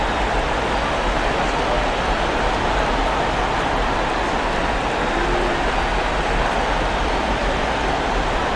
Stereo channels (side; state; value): both; identical; correlation 1.00